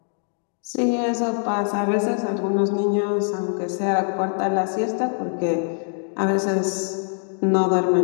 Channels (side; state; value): right; silent; 63 dB below the other